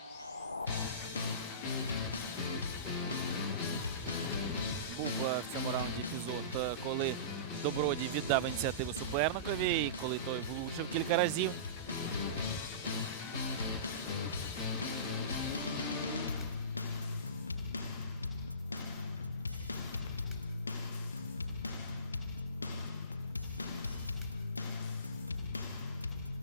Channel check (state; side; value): inverted; both; correlation -0.31